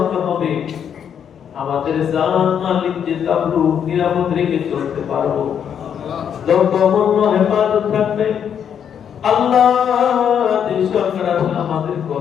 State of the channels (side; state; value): right; quieter; 8.3 dB